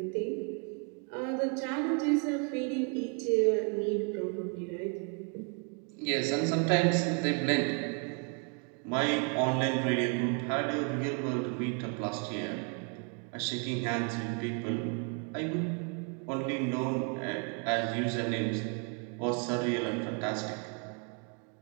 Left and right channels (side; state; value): left; quieter; 37.6 dB